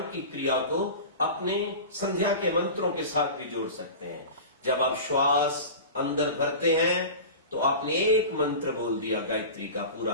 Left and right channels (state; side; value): inverted; both; correlation -0.33